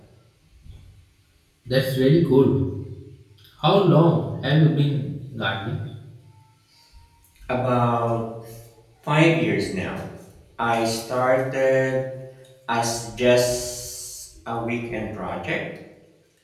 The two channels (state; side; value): identical; both; correlation 1.00